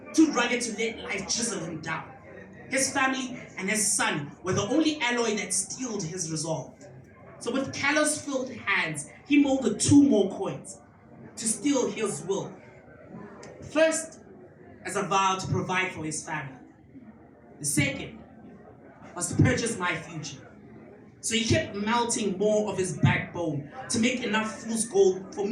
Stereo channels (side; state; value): both; identical; correlation 1.00